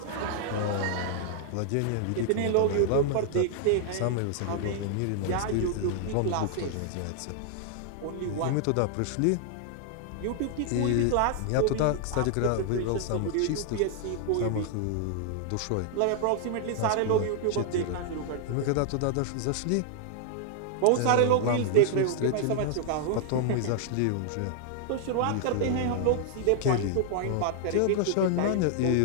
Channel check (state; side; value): different; both; correlation 0.00